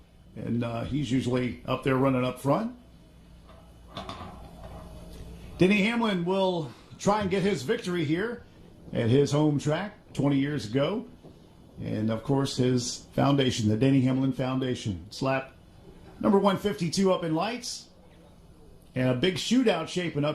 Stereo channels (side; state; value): both; identical; correlation 1.00